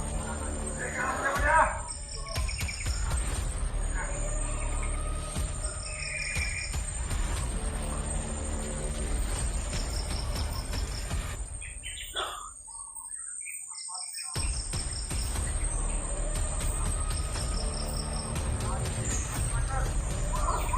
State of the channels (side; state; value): both; identical; correlation 1.00